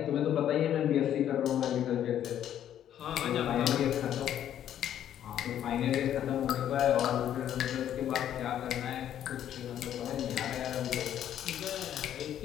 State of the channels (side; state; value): right; quieter; 10.7 dB